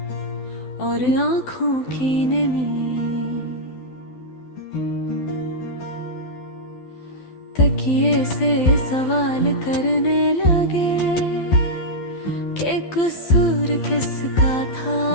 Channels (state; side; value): late; right; 12 ms